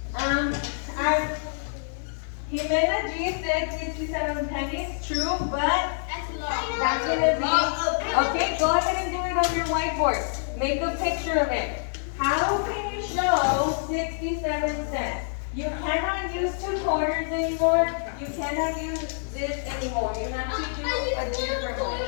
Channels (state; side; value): silent; right; 61 dB below the other